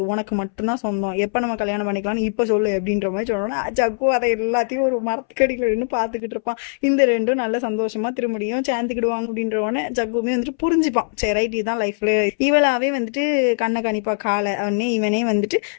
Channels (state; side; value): silent; right; 65 dB below the other